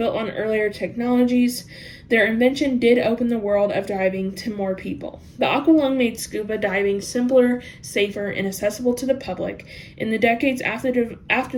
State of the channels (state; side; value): identical; both; correlation 1.00